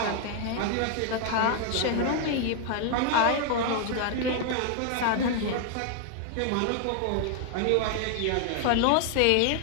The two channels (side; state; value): both; different; correlation 0.00